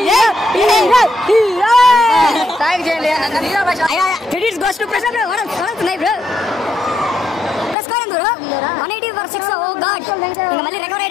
థాంక్ చేయండి. హీరో భాష credits goes to Prashant bro. World నై bro. Score bro 180 for 6. Oh god, మళ్ళీ రికవర్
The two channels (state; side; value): drops out; right; at 7.8 s